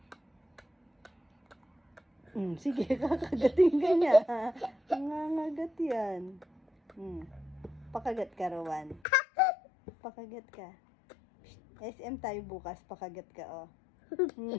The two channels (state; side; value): drops out; right; at 9.0 s